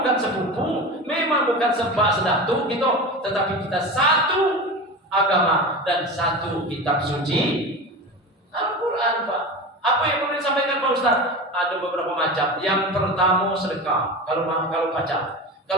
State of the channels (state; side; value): normal; both; correlation 0.28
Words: sepupu, memang bukan sebab sedatu gitu, tetapi kita satu agama dan satu kitab suci Al-Quran, Pak. Apa yang perlu disampaikan Pak Ustaz? Ada beberapa macam. Yang pertama sedekah. Kalau baca.